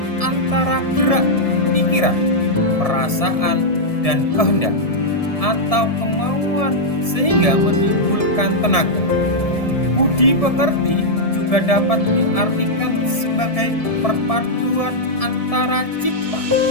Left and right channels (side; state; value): right; late; 1.7 ms